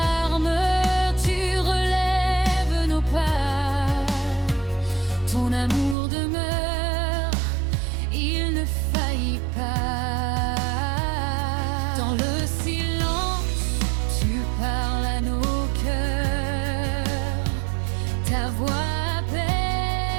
tu relèves nos pas. Ton amour demeure, il ne faillit pas. Dans le silence, tu parles à nos cœurs. Ta voix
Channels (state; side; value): drops out; left; at 6.0 s